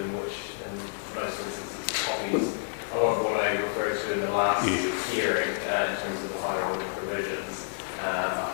which in most instances copies a lot of what I referred to in the last hearing in terms of the higher order provisions.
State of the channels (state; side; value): silent; right; digital silence